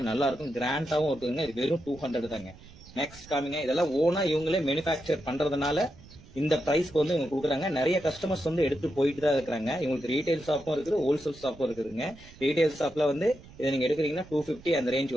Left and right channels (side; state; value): right; noise; rumble, 20 dB below the sound